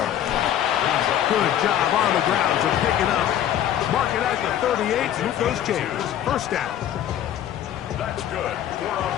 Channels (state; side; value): quieter; right; 10.9 dB